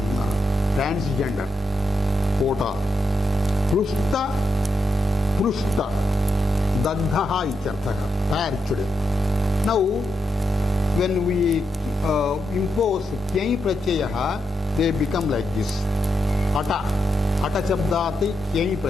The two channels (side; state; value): both; normal; correlation 0.84